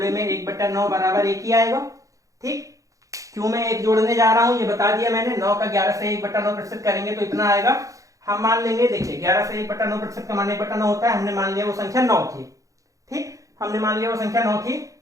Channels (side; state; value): left; late; 0.16 ms